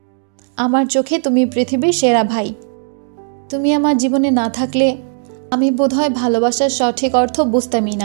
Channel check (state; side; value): silent; left; 65 dB below the other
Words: আমার চোখে তুমি পৃথিবীর সেরা ভাই। তুমি আমার জীবনে না থাকলে আমি বোধহয় ভালোবাসার সঠিক অর্থ বুঝতামই